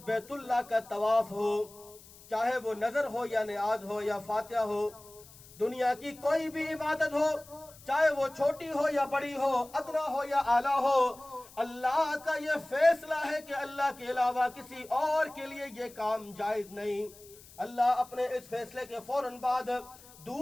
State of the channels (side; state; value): left; noise; hiss, 22 dB below the sound